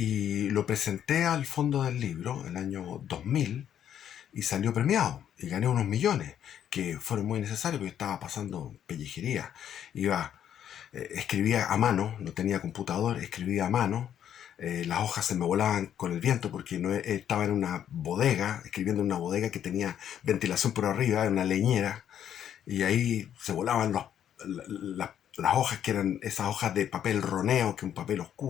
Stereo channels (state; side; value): quieter; right; 9.8 dB